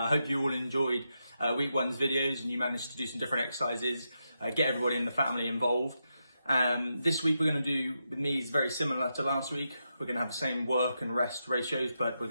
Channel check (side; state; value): both; inverted; correlation -0.85